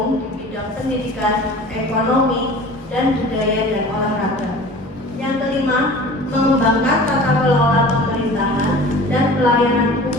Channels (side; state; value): both; normal; correlation 0.42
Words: di bidang pendidikan, ekonomi, dan budaya dan olahraga. Yang kelima, mengembangkan tata kelola pemerintahan dan pelayanan